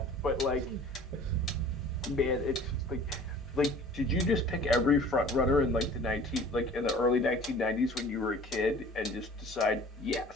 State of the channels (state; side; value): normal; both; correlation 0.47